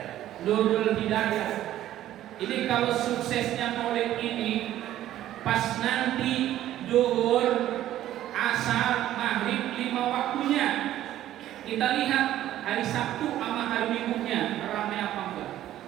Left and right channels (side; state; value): left; quieter; 13.1 dB